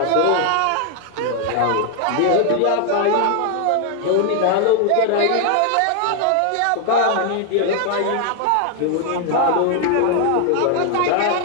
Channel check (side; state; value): both; different; correlation 0.00